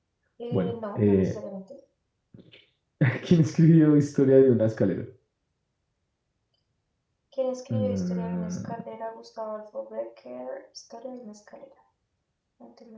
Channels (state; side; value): identical; both; correlation 1.00